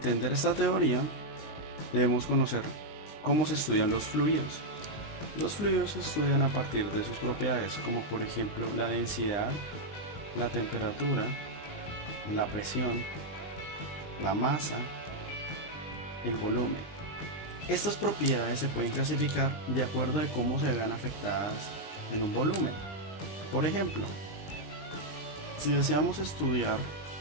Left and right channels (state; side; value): late; right; 20 ms